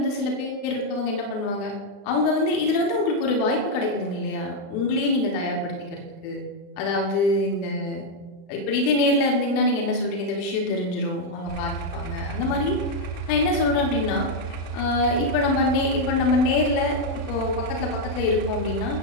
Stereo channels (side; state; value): right; late; 35 ms